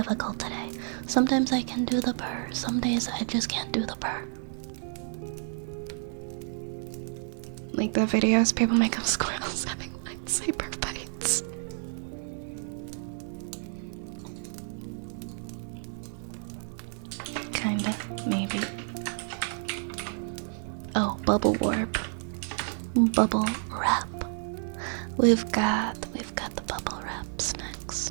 today. Sometimes I can do the purr, some days I just can't do the purr. Like the videos people make of squirrels having lightsaber fights. Kinda, maybe. Oh, bubble warp. Bubble wrap. We've got the bubble wraps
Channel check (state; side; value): silent; left; 56 dB below the other